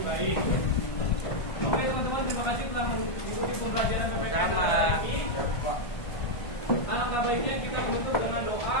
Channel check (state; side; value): late; right; 1.5 ms